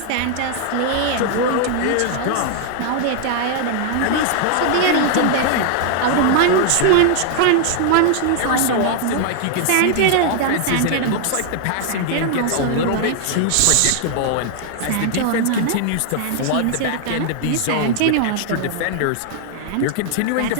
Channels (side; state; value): both; different; correlation 0.00